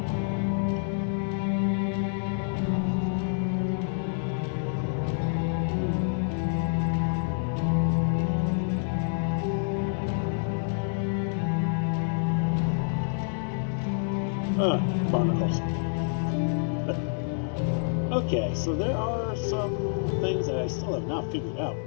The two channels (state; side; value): silent; right; digital silence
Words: Barnacles. Okay, so there are some things that I still have not figured out